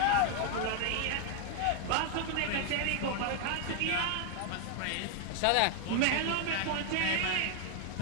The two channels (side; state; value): both; different; correlation 0.00